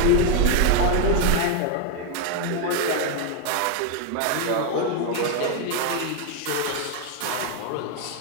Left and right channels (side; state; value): both; different; correlation 0.01